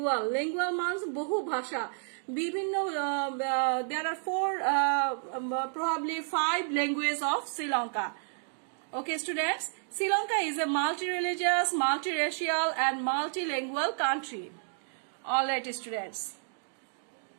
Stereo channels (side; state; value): left; silent; digital silence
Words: means বহু ভাষা, বিভিন্ন there are probably 5 languages of Sri Lanka. Okay, students, Sri Lanka is a multi-religious, multi-racial and multilingual country. All right, students.